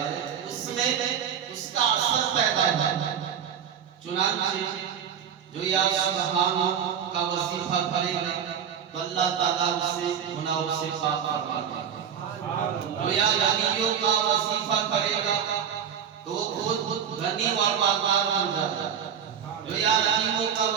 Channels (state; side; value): quieter; left; 8.2 dB